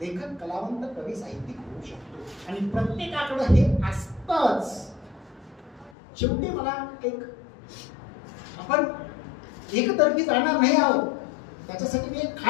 लेखक, कलावंत, कवी, साहित्यिक होऊ शकतो. आणि प्रत्येकाकडे हे असतंच. शेवटी मला एक, आपण एकतर्फी जाणार नाही आहोत, त्याच्यासाठी मी एक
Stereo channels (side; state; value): right; drops out; at 6.0 s